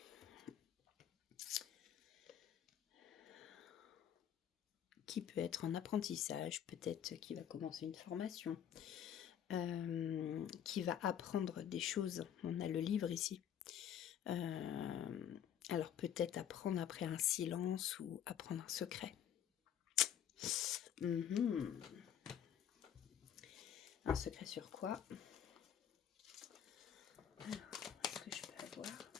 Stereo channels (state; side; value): quieter; right; 9.6 dB